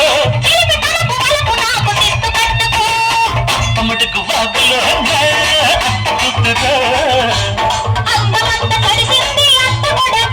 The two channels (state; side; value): identical; both; correlation 1.00